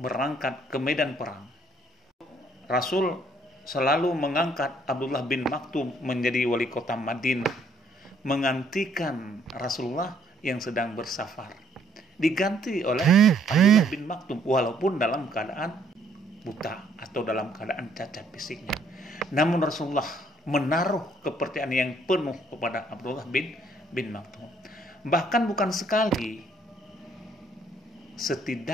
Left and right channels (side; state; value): both; normal; correlation 0.65